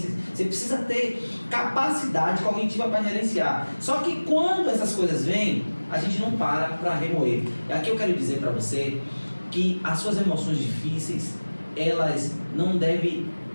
Você precisa ter capacidade cognitiva para gerenciar. Só que quando essas coisas vêm, a gente não para remoer. E aqui eu quero dizer para você que as suas emoções difíceis, elas não devem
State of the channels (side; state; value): both; inverted; correlation -1.00